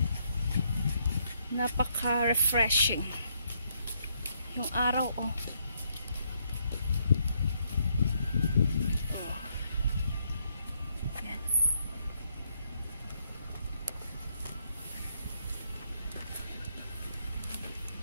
Napaka-refreshing. Yung araw, oh. Oh. Yan.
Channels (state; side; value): inverted; both; correlation -0.73